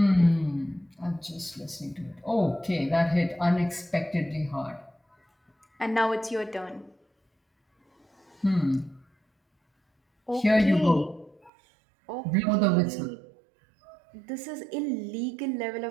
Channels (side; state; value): left; drops out; at 11.5 s